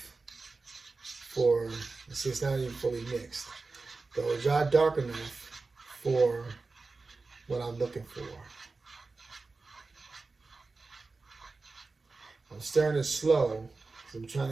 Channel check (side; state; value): left; quieter; 3.8 dB